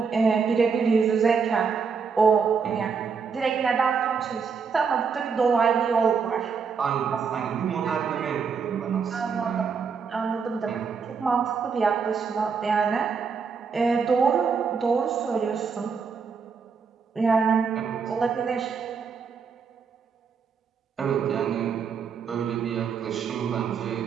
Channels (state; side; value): quieter; left; 5.8 dB